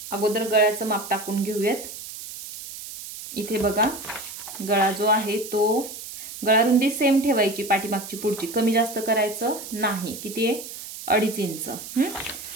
अगोदर गळ्याचं माप टाकून घेऊयात। इथे बघा गळा जो आहे तो गळा रुंदी सेम ठेवायची, पाठीमागची पुढची कमी जास्त करायचं नाही. किती आहे? 2.5 इंच.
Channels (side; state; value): right; noise; hiss, 11 dB below the sound